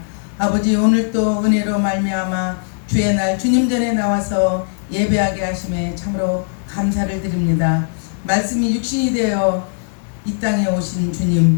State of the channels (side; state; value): right; silent; digital silence